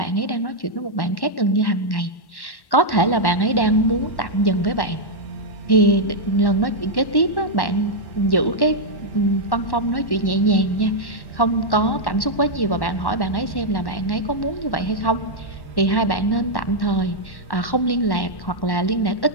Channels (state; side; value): late; right; 1.1 ms